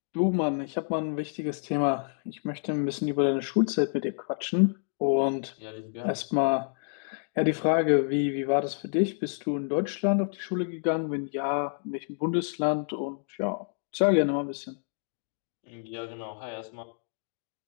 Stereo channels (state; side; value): silent; right; digital silence